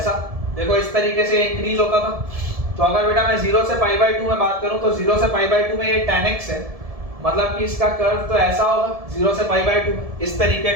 देखो इस तरीके से इंक्रीज होता था। तो अगर बेटा मैं 0 से पाई बाई 2 में बात करूं तो 0 से पाई बाई 2 में ये tan x है, मतलब कि इसका कर्व तो ऐसा होगा 0 से पाई बाई 2 में इस तरीके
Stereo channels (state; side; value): late; left; 1.7 ms